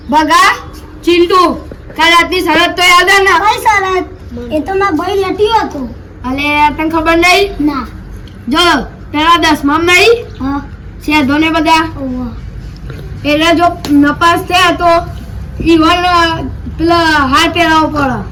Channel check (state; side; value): identical; both; correlation 1.00